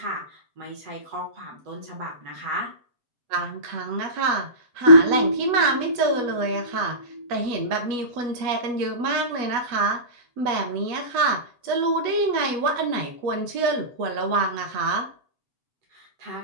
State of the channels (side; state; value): left; late; 8.2 ms